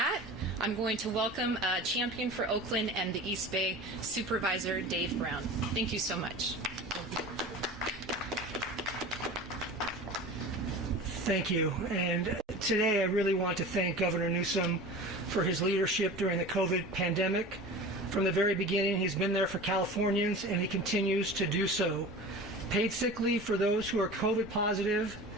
I'm going to welcome Champion for Oakland and the East Bay, Supervisor Dave Brown. Thank you so much. Thank you. And today I really want to thank Governor Newsom for his leadership during the COVID pandemic. From the very beginning, he's been there for Californians, and he continues to do so. Paid sick leave for those who are COVID positive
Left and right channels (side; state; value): both; normal; correlation 0.36